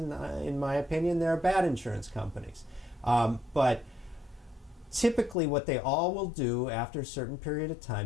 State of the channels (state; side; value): drops out; right; at 5.4 s